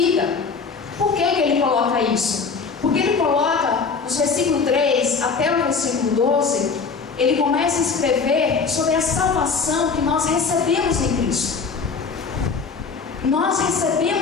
Por que ele coloca isso? Porque ele coloca, nos versículos 3 até o versículo 12, ele começa a escrever sobre a salvação que nós recebemos em Cristo. Nós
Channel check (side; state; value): right; quieter; 5.1 dB